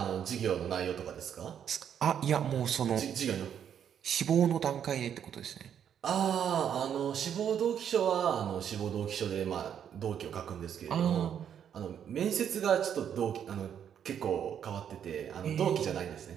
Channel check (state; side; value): quieter; left; 8.8 dB